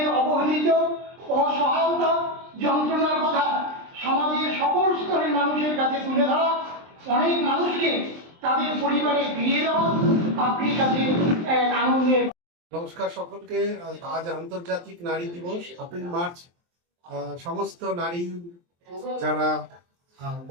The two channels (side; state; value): left; late; 23 ms